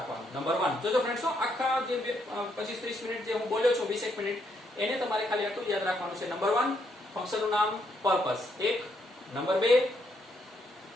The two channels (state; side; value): normal; both; correlation 0.75